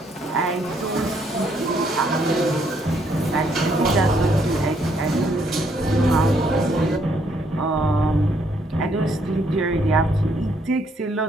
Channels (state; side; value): normal; both; correlation 0.70